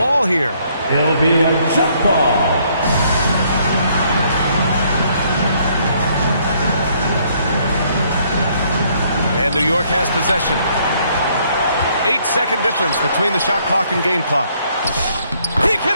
here. It'll be a jump ball. And New York has possession. 8-second difference between the shot clock and game clock. He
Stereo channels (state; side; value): inverted; both; correlation -0.67